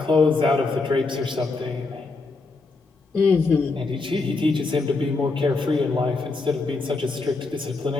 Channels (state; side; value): quieter; right; 3.7 dB